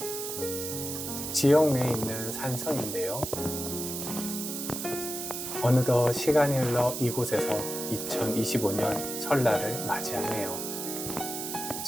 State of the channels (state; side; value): noise; right; hiss, 5 dB below the sound